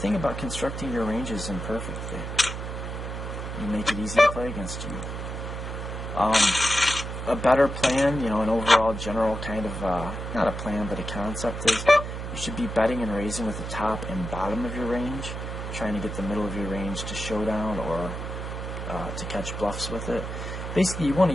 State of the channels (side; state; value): right; noise; hum, 6 dB below the sound